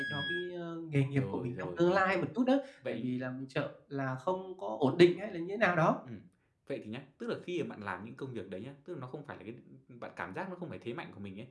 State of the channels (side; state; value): both; identical; correlation 1.00